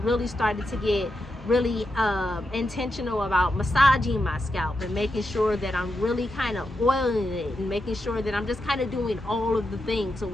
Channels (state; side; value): normal; both; correlation 0.86